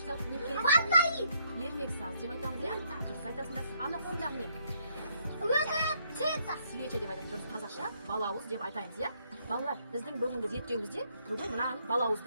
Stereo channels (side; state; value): both; inverted; correlation -0.71